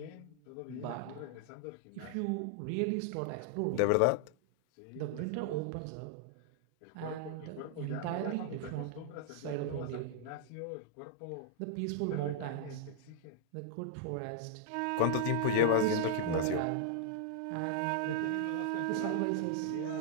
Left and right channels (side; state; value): both; different; correlation 0.00